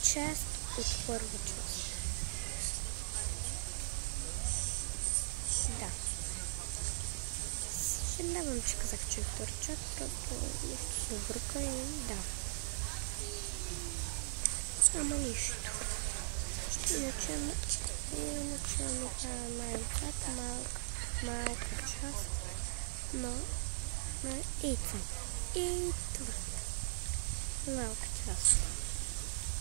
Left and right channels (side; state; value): left; silent; digital silence